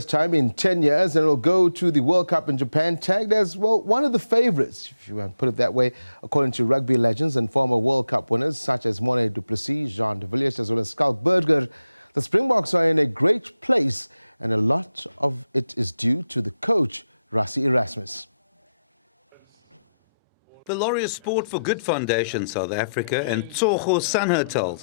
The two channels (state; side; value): inverted; both; correlation -0.88